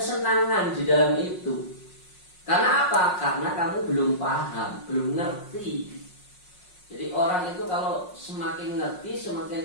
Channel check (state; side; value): late; right; 5.5 ms